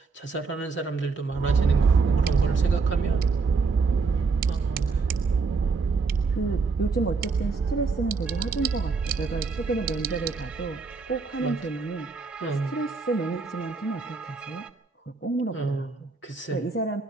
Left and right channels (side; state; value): left; quieter; 4.5 dB